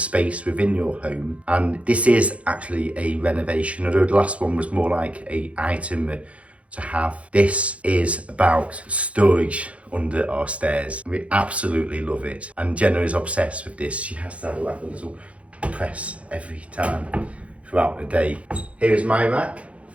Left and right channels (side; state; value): left; late; 0.063 ms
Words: within your home. And this is actually a renovation, although the last one was more like an item to have. This is about storage under our stairs. We absolutely love it, and Jenna is obsessed with this. She has to have like a little press every time throughout the day. Here is my rack